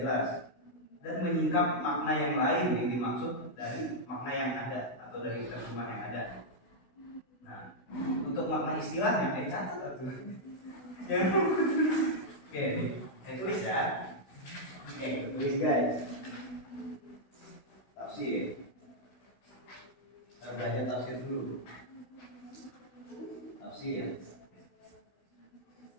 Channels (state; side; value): late; right; 16 ms